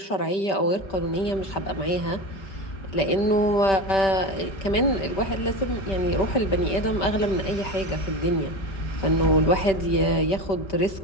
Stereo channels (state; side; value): late; right; 5.2 ms